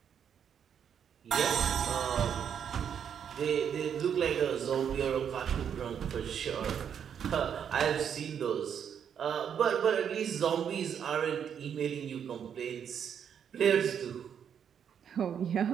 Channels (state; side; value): quieter; left; 8.2 dB